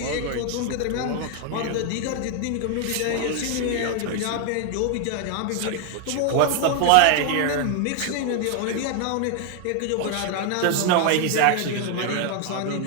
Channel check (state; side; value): different; both; correlation 0.00